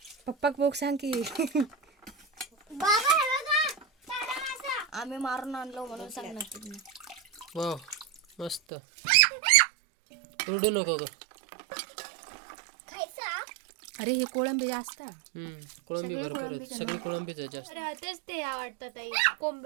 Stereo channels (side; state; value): left; drops out; at 8.6 s